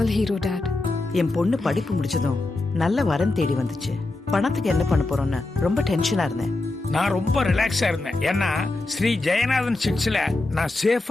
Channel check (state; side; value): quieter; right; 3.0 dB